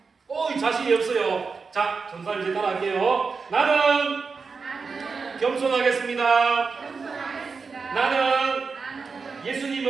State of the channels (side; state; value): left; quieter; 4.9 dB